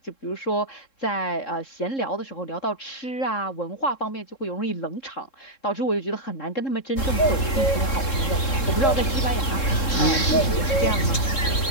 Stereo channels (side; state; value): right; late; 3.7 ms